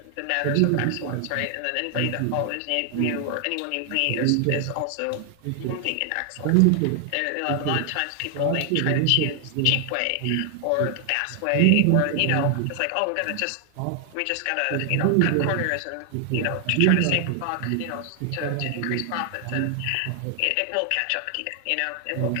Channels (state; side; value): different; both; correlation 0.00